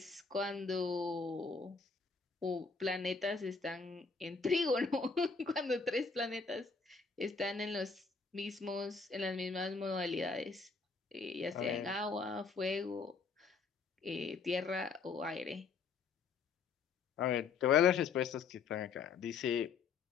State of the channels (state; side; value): quieter; right; 5.0 dB